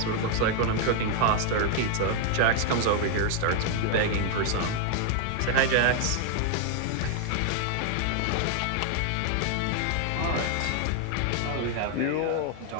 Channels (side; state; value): both; different; correlation 0.00